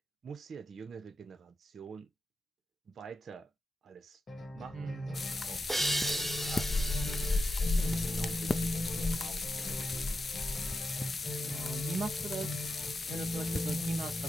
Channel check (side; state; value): both; normal; correlation 0.89